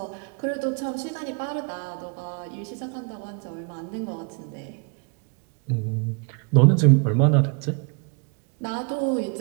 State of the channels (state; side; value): quieter; left; 36.3 dB